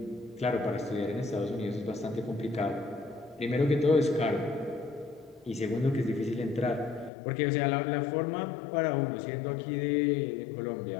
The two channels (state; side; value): drops out; right; at 7.1 s